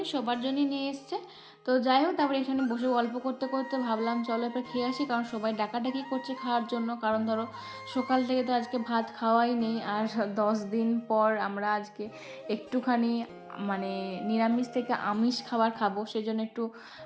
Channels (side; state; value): both; identical; correlation 1.00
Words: সবার জন্যই নিয়ে এসছে। তো যাই হোক, তারপরে এখানে বসে গল্প করতে করতে ভাবলাম চলো এবার খেয়ে আসি, কারণ সবাই ডাকাডাকি করছে খাওয়ার জন্য। কারণ ধরো সকাল থেকে তো আজকে ভাত খাওয়াই নেই, আর 10 দিন পর আমরা আজকে একটুখানি মানে নিরামিষ থেকে আমিষ খাবার খাবো, সেজন্য একটু